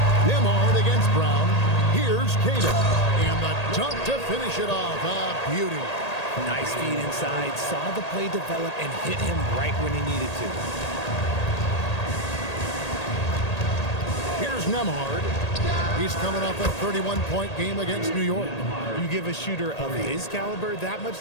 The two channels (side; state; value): right; late; 1.8 ms